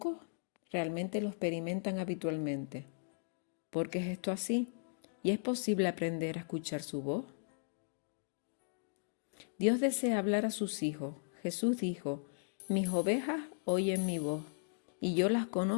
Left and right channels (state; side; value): silent; right; digital silence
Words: realmente lo experimentan habitualmente. ¿Por qué es esto así? ¿Y es posible aprender a escuchar su voz? Dios desea hablar a sus hijos. Jesús dijo: mis ovejas oyen mi voz, y yo las